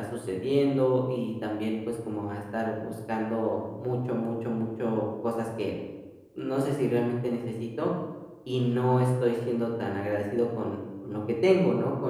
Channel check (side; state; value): both; identical; correlation 1.00